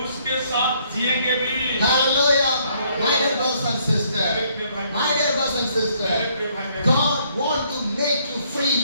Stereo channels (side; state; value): both; inverted; correlation -0.67